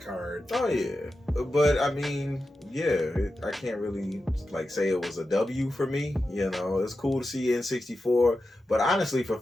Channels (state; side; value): normal; both; correlation 0.91